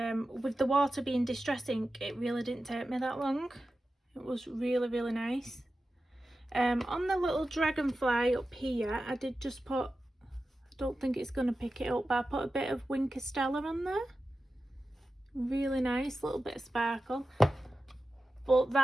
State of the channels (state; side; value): normal; both; correlation 0.93